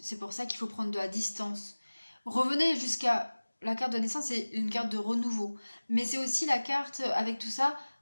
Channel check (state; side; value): inverted; both; correlation -1.00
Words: pour ça qu'il faut prendre de la distance. Revenez jusqu'à la carte de naissance, c'est une carte de renouveau. Mais c'est aussi la carte, avec tout ça,